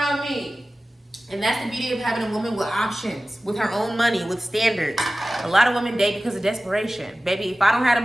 me. And that's the beauty of having a woman with options, with her own money, with standards. A lot of women date because of desperation. Baby, if I don't have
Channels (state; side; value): normal; both; correlation 0.96